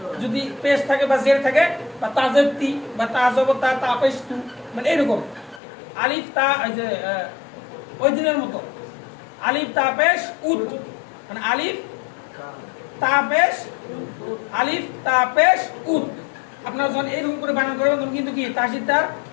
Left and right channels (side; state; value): right; drops out; at 5.6 s